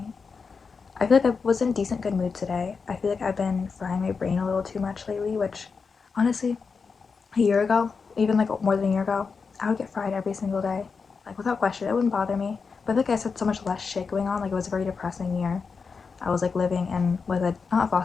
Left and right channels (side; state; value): right; quieter; 5.2 dB